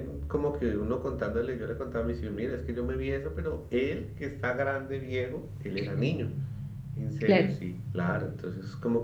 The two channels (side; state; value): both; identical; correlation 1.00